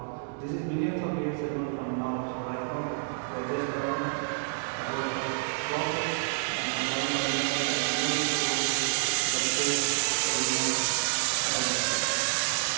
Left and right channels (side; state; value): left; silent; digital silence